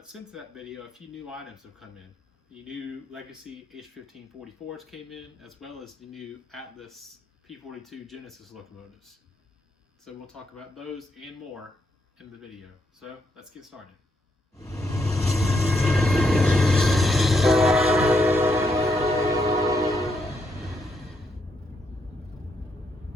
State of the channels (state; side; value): normal; both; correlation 0.77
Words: since that video, a few new items have come in. The new Legacy H1544s came in, as well as the new Atlas P42 Genesis locomotives. So we'll talk about those and more in the video. So let's get started.